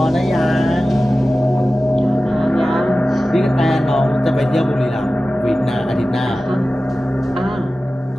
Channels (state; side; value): normal; both; correlation 0.95